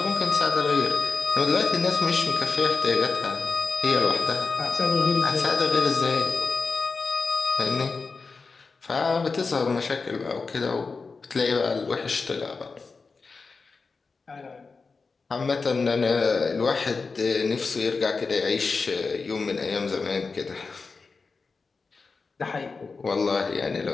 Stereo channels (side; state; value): right; quieter; 4.4 dB